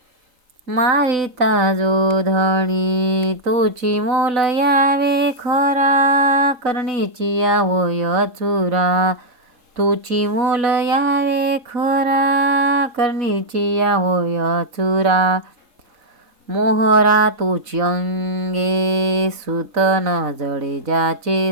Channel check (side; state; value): left; late; 3.7 ms